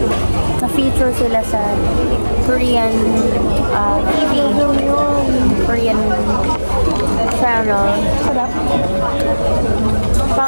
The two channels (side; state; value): both; inverted; correlation -1.00